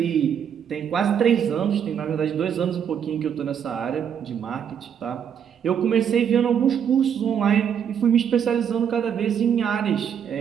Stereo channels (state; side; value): quieter; left; 8.2 dB